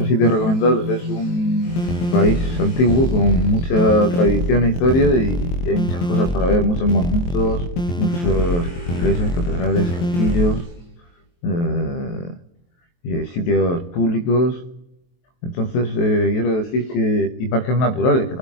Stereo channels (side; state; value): right; late; 23 ms